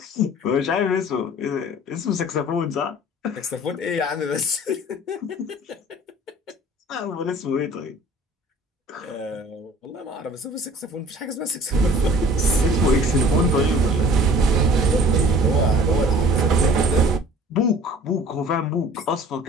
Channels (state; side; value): normal; both; correlation 0.48